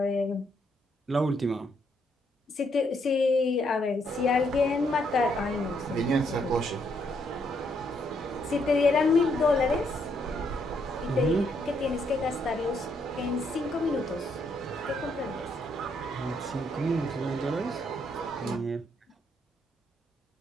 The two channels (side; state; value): both; normal; correlation 0.74